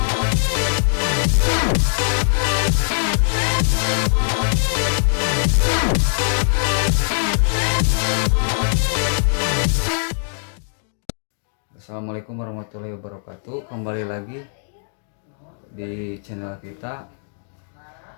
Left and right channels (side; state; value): right; silent; digital silence